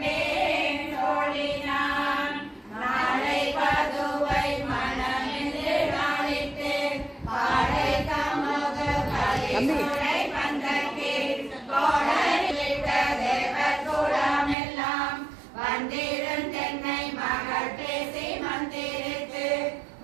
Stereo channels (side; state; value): left; drops out; at 14.6 s